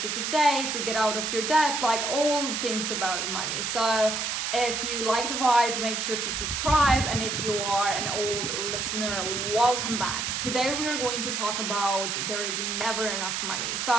days, to get out of your debt, like all things about money. So if you like the vibe, make sure to subscribe. And if you are an old listener, welcome back. Today we are going to talk about there is never enough money.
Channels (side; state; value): right; noise; hiss, 1 dB below the sound